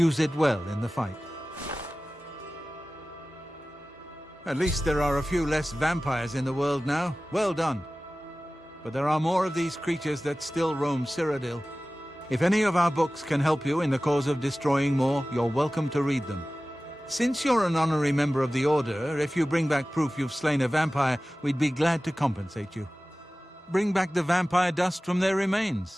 it well in the fight. At least there are a few less vampires in the world now. Well done. But there are more of these creatures that still roam Cyrodiil. If any of our books can help you in the cause of destroying more, you're welcome to read them. Since you're an honorary member of the Order, if you bring back proof you've slain a vampire, we'd be glad to compensate you. Bring back the vampire dust from their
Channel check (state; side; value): normal; both; correlation 0.97